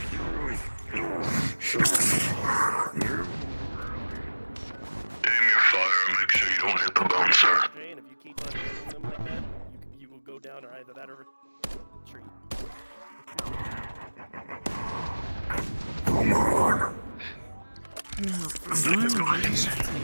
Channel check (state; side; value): inverted; both; correlation -1.00